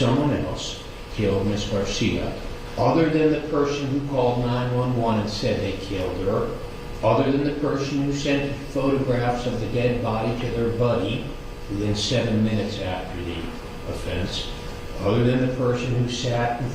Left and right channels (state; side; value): identical; both; correlation 1.00